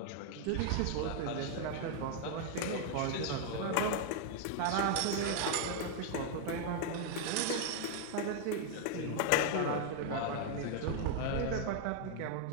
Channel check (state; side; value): different; both; correlation 0.00